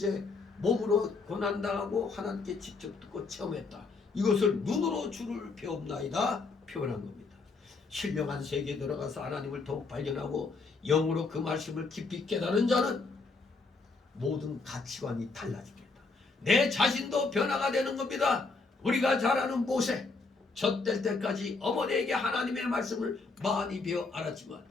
몸으로 고난당하고 하나님께 직접 듣고 체험했다. 이것을 눈으로 주를 배웠나이다 표현한 겁니다. 신령한 세계에 들어가서 하나님을 더욱 발견하고 영으로 그 말씀을 깊이 깨달은 자는 모든 가치관이 달라집니다. 내 자신도 변화가 되는 겁니다. 우리가 잘 아는 모세, 젖될 때까지 어머니에게 하나님의 말씀을 많이 배워 알았지만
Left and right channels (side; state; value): right; quieter; 4.0 dB